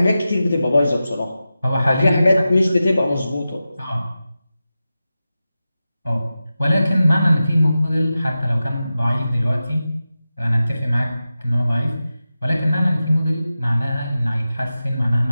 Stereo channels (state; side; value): inverted; both; correlation -0.93